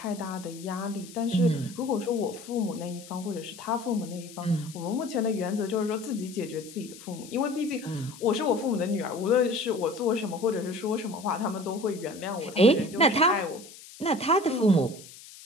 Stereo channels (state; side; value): noise; left; hiss, 18 dB below the sound